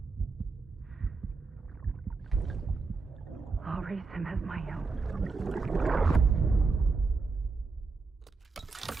I'll raise him as my own.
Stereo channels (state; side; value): quieter; left; 4.3 dB